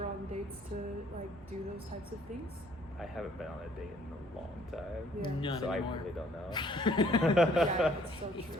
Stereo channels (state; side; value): normal; both; correlation 0.61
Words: on dates to like do those types of things? I haven't been on a date in a long time. Yeah. None So anymore. I really don't know. Yeah, it's so It's true.